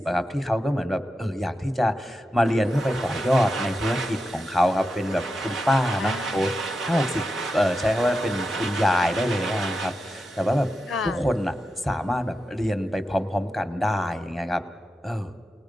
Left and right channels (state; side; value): normal; both; correlation 0.88